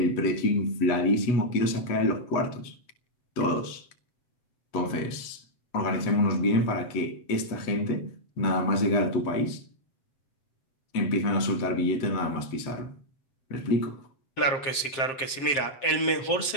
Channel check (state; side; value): late; right; 7.5 ms